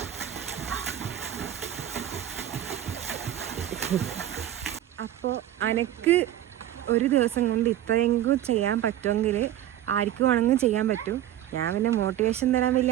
അപ്പോൾ അനക്ക് ഒരു ദിവസം കൊണ്ട് ഇത്രയെങ്കിലും ചെയ്യാൻ പറ്റുമെങ്കിൽ ആർക്കും വേണമെങ്കിലും ചെയ്യാൻ പറ്റും. ഞാൻ പിന്നെ മോട്ടിവേഷൻ തരാൻ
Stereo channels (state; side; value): quieter; left; 12.1 dB